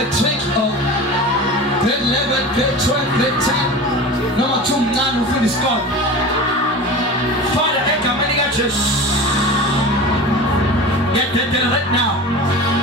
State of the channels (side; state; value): both; normal; correlation 0.33